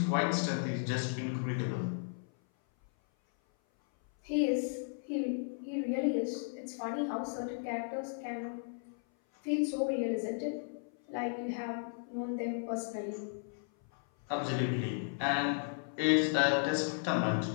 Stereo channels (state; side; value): silent; right; 55 dB below the other